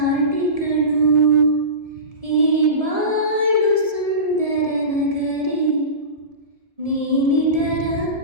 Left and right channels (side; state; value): left; late; 1.7 ms